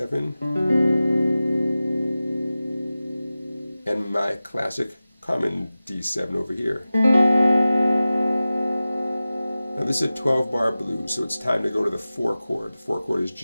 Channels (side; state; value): both; inverted; correlation -0.96